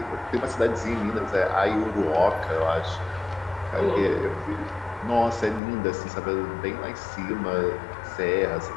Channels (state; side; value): drops out; right; at 5.6 s